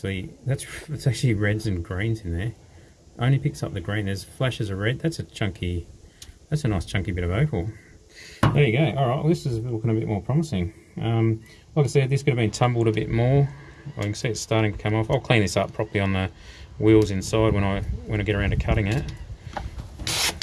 reds and greens in there. Only picks up the green. There's flashes of red. That's a nice chunky bit of opal. There you go. Alright, well, this is looking a bit more promising. Like I said, this could have been tumbled a bit more. I can see it's starting to come off. I'll clean this up properly on the wheels inside when I get around to cutting it.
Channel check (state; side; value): identical; both; correlation 1.00